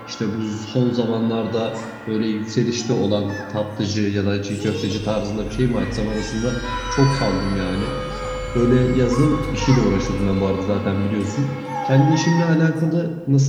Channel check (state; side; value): identical; both; correlation 1.00